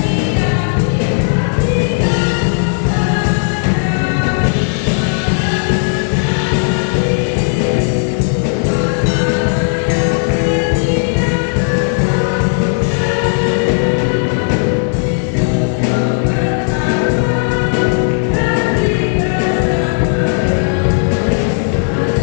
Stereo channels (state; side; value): silent; right; 67 dB below the other